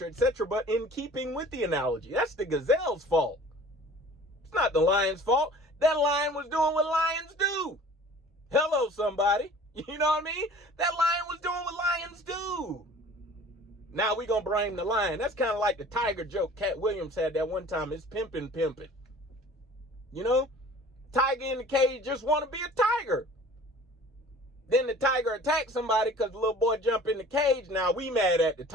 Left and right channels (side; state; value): both; normal; correlation 0.47